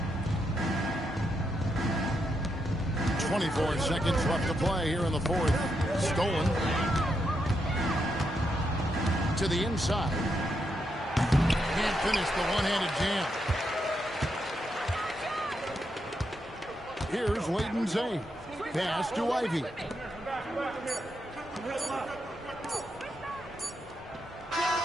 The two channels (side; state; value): both; normal; correlation 0.82